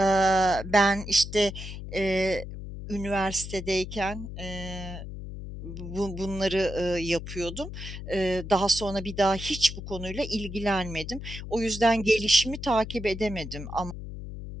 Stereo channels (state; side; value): noise; left; hum, 9 dB below the sound